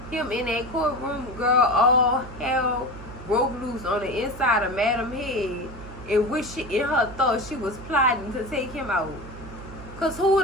him in that courtroom, girl, all hell broke loose on the inside of Madam's head, in which in her thought she was plotting to take him out. Because who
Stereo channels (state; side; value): noise; right; hum, 15 dB below the sound